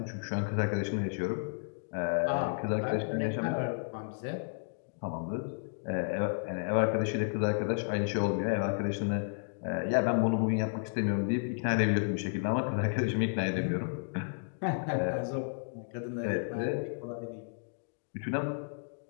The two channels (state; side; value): silent; right; digital silence